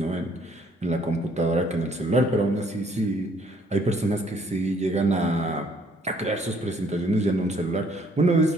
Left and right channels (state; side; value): normal; both; correlation 0.64